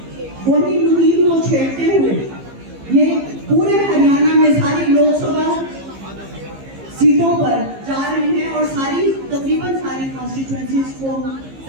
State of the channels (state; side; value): late; left; 15 ms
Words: वही मुहिम को छेड़ते हुए ये पूरे हरियाणा में सारी लोकसभा सीटों पर जा रहे हैं और तकरीबन सारी कॉन्स्टिट्यूएंसीज को